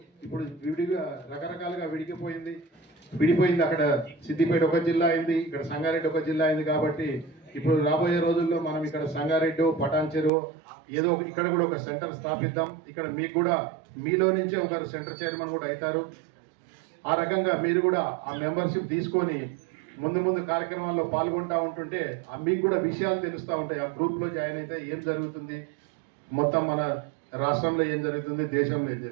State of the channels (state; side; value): drops out; left; at 10.3 s